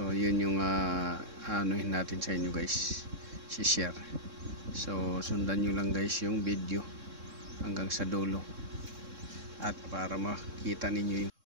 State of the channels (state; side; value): late; left; 3.7 ms